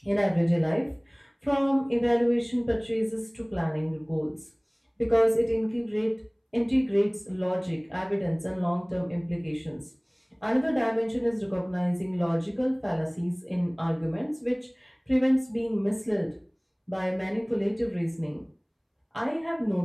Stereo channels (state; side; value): identical; both; correlation 1.00